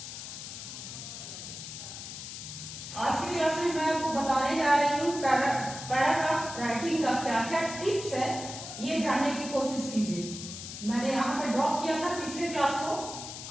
आज की class में मैं आपको बताने जा रही हूँ paragraph writing का क्या क्या टिप्स है, ये जानने की कोशिश कीजिए। मैंने यहाँ पे ड्रॉप किया था पिछले क्लास को,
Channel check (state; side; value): noise; left; hiss, 10 dB below the sound